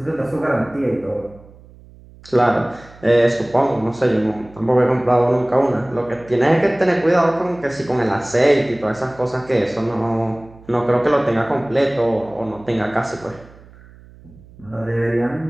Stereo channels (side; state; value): right; noise; hum, 23 dB below the sound